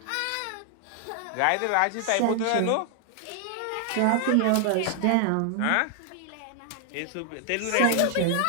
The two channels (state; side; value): different; both; correlation 0.00